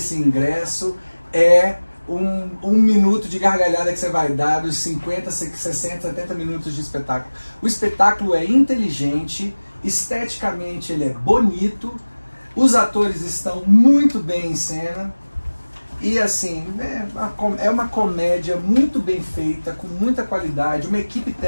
ingresso é um minuto de gargalhada que você vai dar dos 50, 60, 70 minutos de espetáculo. O espetáculo é inteligente, esteticamente ele é bonito, os atores estão muito bem em cena e assim, é uma comédia muito bem feita, com muita qualidade, uma equipe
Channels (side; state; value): both; inverted; correlation -1.00